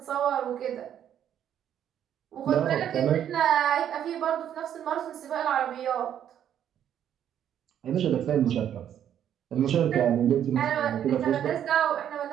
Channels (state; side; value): quieter; left; 9.9 dB